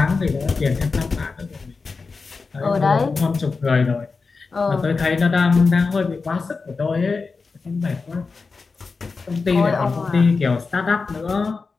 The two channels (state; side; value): quieter; right; 4.4 dB